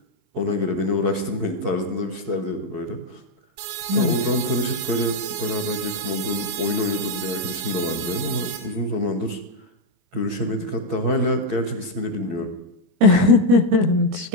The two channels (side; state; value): left; late; 21 ms